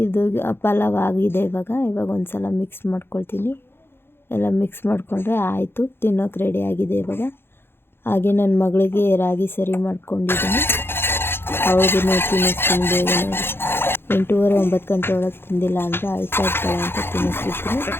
ಪಲಾವ್ ಆಗಿದೆ. ಇವಾಗ ಒಂದು ಸಲ ಮಿಕ್ಸ್ ಮಾಡ್ಕೊಳ್ತೀನಿ. ಎಲ್ಲ ಮಿಕ್ಸ್ ಮಾಡಿಕೊಂಡ್ರೆ ಆಯಿತು, ತಿನ್ನೋಕೆ ರೆಡಿ ಆಗಿದೆ ಇವಾಗ. ಹಾಗೆ ನನ್ನ ಮಗಳಿಗೆ ರಾಗಿ ಸರಿ ಮಾಡ್ಕೊಂಡಿದ್ದೀನಿ, ಅವಳಿಗೂ ತಿನ್ನಿಸ್ತೀನಿ ಬೇಗನೆ. 8:30 9 ಗಂಟೆ ಒಳಗೆ ತಿಂದಿಲ್ಲ ಅಂದರೆ ಅಳ್ತಾ ಇರ್ತಾಳೆ ಅಂತ ತಿನ್ನಿಸ್ಬಿಡ್ತೀನಿ.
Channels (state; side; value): late; right; 0.11 ms